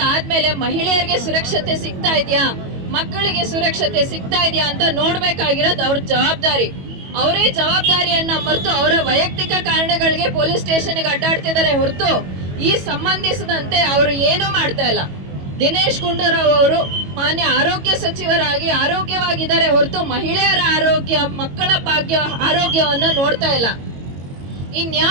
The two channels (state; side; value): late; left; 22 ms